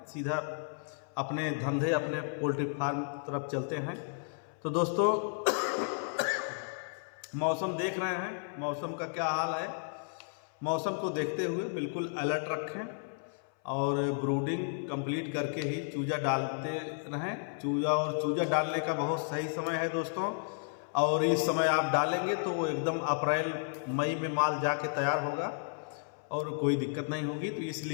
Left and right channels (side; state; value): right; silent; 56 dB below the other